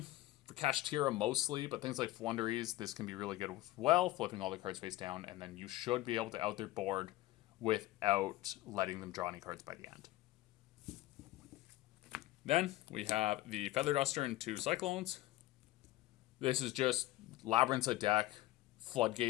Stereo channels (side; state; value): right; quieter; 16.8 dB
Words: for Kashtira mostly, but things like Flunderies, this can be really good as well, flipping all the cards face down, and then you should be able to out their board without letting them draw any cards by the end. Then we have the Feather Duster and 2 Cyclones. This is just Labyrinth's a deck.